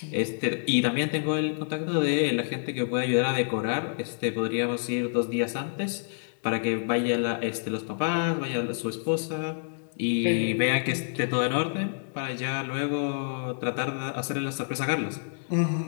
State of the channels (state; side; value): silent; right; digital silence